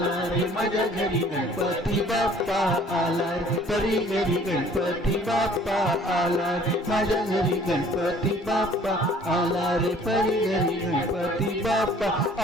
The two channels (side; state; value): both; normal; correlation 0.54